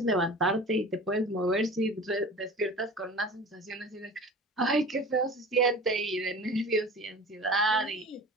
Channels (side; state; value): both; normal; correlation 0.38